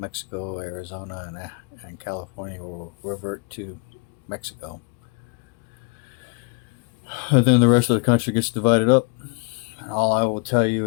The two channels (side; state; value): right; quieter; 33.5 dB